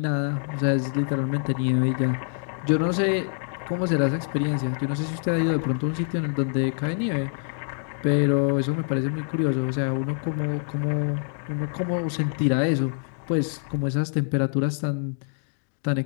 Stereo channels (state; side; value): silent; right; 56 dB below the other